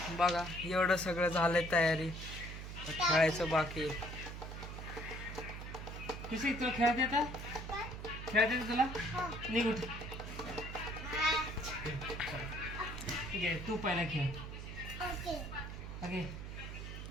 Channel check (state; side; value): noise; right; hum, 8 dB below the sound